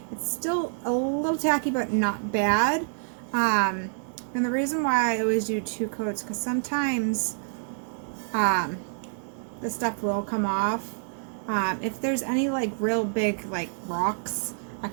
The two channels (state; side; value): silent; left; digital silence